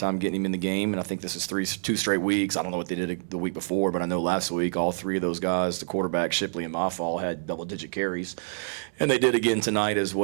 getting him in the game, and I think this is 2 straight weeks. I don't know what they did the week before, but I know last week all 3 of those guys, the quarterback, Shipley, and Mafal, had double-digit carries, and they did again tonight as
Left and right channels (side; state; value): left; silent; 60 dB below the other